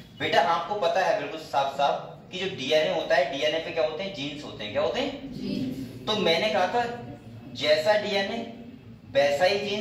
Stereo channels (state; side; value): identical; both; correlation 1.00